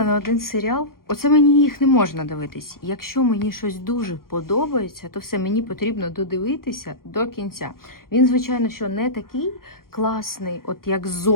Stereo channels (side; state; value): right; late; 0.92 ms